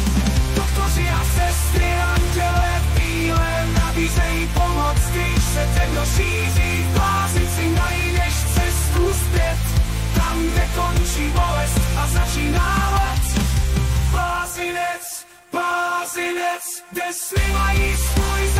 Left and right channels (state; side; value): identical; both; correlation 1.00